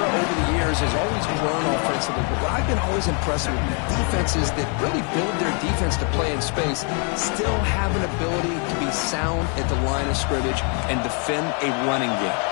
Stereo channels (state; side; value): quieter; right; 38.1 dB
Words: over the years has always grown offensively, but what I've been always impressed with defenses that really build their defense to play in space still have an ability to be sound at the line of scrimmage and defend a running game.